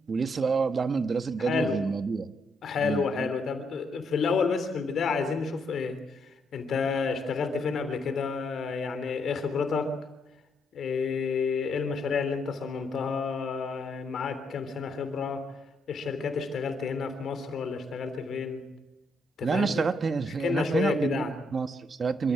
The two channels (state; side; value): normal; both; correlation 0.75